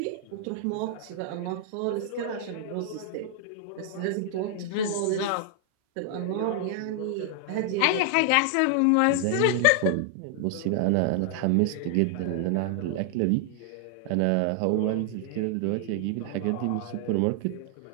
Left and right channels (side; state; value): both; different; correlation 0.00